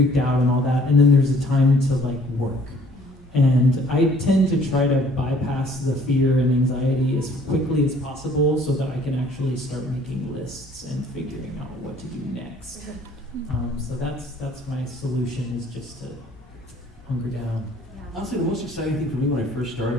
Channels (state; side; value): normal; both; correlation 0.57